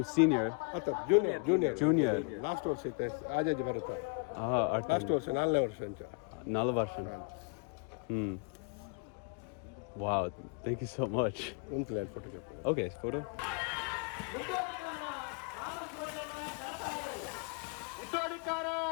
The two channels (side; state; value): right; quieter; 35.8 dB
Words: senior. Junior last ವರ್ಷ ಐತೆ ಆಜಾಜಿ ಬರುತ್ತೆ Artan. ಲಾಸ್ಟ್ ವರ್ಷ 4ನೇ ವರ್ಷ ಅಂತ 4 ವರ್ಷ. Wow, thank you so much. ಒಂದು ಲೈನ್ ಫೋಟೋ Okay, photo.